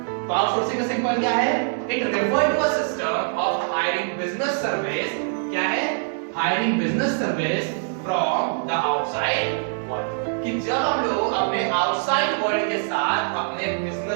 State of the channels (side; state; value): left; silent; digital silence